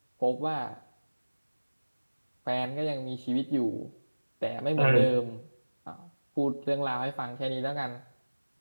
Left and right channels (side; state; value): both; inverted; correlation -1.00